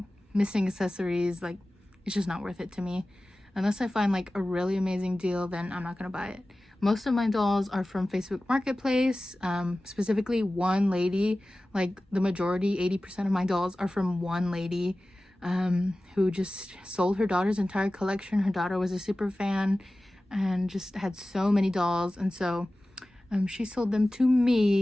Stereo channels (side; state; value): both; normal; correlation 0.96